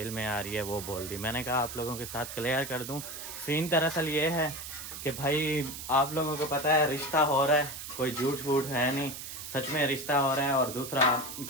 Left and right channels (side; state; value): right; noise; hiss, 9 dB below the sound